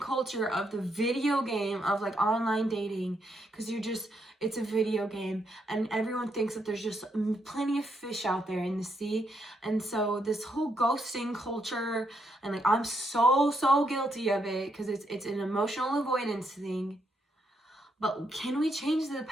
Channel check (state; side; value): normal; both; correlation 0.78